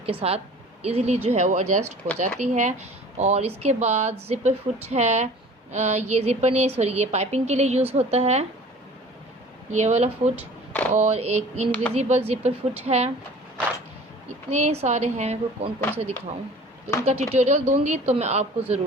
के साथ ईज़िली जो है वो एडजस्ट हो जाती है। और इसके बाद ज़िपर फुट है। ये ज़िपर नहीं, सॉरी, ये पाइपिंग के लिए यूज़ होता है ये वाला फुट। और एक इनविजिबल ज़िपर फुट है। इतने सारे हैं, मैं को कौन कौन से दिखाऊं। तो इनका ट्यूटोरियल दूंगी तो मैं आपको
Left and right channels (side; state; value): both; normal; correlation 0.45